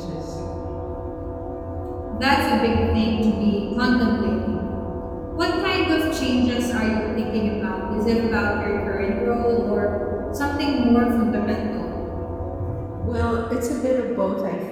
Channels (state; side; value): identical; both; correlation 1.00